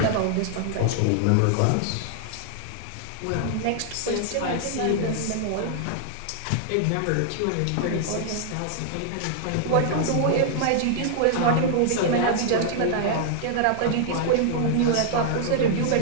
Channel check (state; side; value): different; both; correlation -0.01